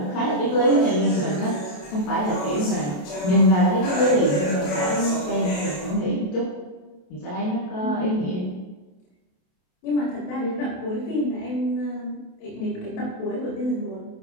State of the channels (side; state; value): right; late; 27 ms